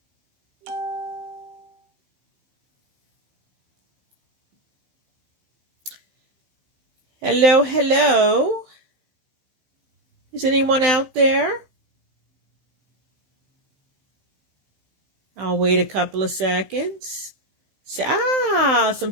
Hello, hello. Is anyone out there? I'll wait a couple of seconds.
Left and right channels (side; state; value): left; late; 16 ms